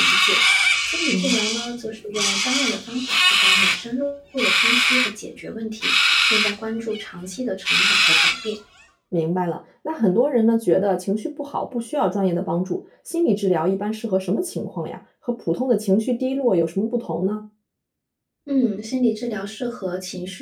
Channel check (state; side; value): identical; both; correlation 1.00